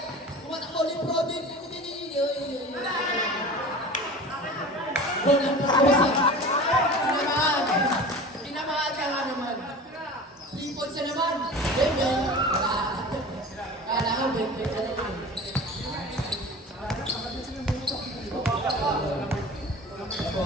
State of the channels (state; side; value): normal; both; correlation 0.37